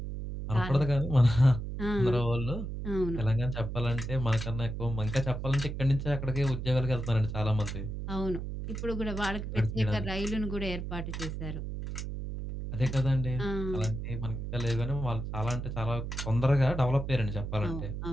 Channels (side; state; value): right; noise; hum, 5 dB below the sound